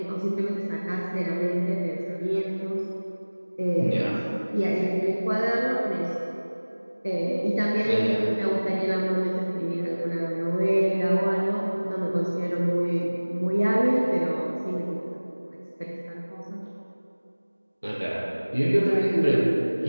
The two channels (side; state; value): both; inverted; correlation -1.00